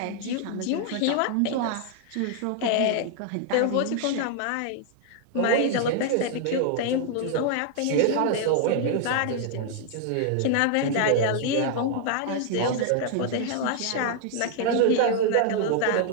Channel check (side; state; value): both; different; correlation 0.00